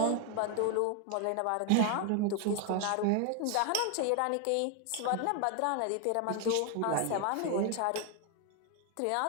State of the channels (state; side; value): different; both; correlation 0.01